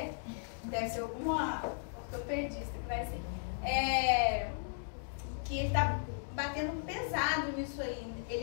deve ser alguma ortopedista que vai ser. Que ele está batendo pesado nisso aí.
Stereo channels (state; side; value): silent; right; digital silence